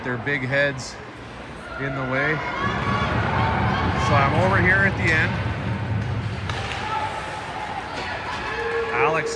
their big heads in the way. So I'm over here at the end. Alex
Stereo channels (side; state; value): both; identical; correlation 1.00